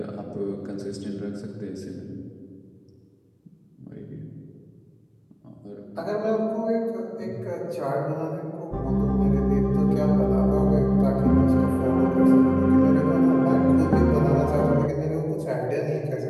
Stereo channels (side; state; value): both; identical; correlation 1.00